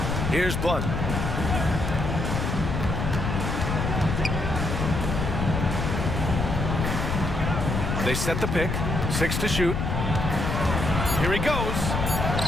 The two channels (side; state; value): left; noise; rumble, 1 dB below the sound